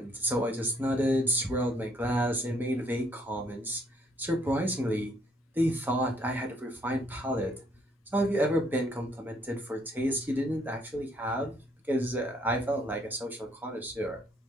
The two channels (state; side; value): normal; both; correlation 0.67